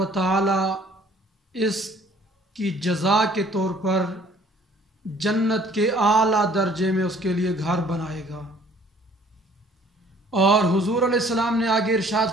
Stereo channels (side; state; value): both; normal; correlation 0.56